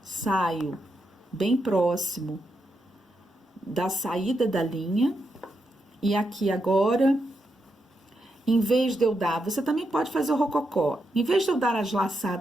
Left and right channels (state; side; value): normal; both; correlation 0.83